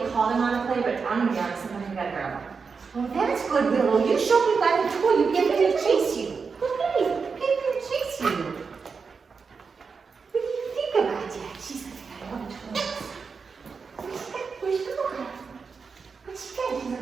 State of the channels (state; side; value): quieter; left; 5.2 dB